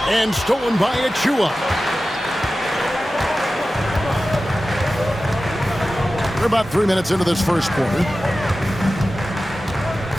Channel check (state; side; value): normal; both; correlation 0.95